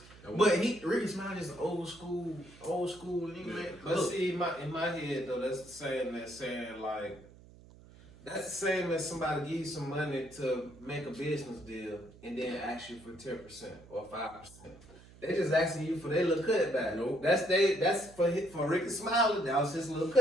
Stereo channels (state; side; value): noise; right; hum, 22 dB below the sound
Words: But Ricky Smiley is old school nigga, man. But see, in my head though, that's the same as saying like, that's the same as somebody give you some money to make a business deal and then ask you for 10% or 5%. They just asking you for their little cutback. Nope. That's for Ricky Smiley. That was his little